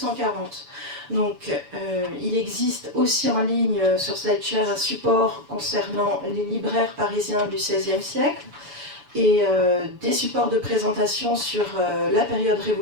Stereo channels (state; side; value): late; left; 7.0 ms